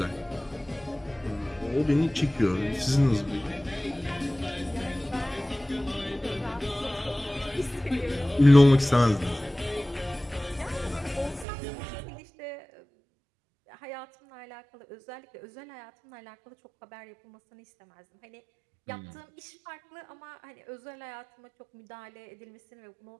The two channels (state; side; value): drops out; left; at 11.5 s